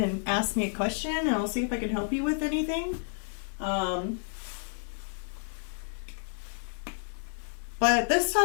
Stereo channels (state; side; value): silent; right; 58 dB below the other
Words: ask me a question, and I'll see if I can help you with anything. But this